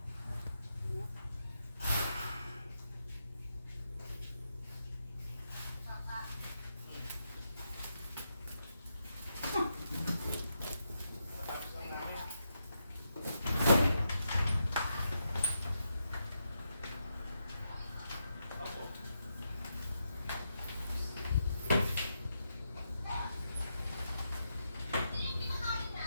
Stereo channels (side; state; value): both; inverted; correlation -0.83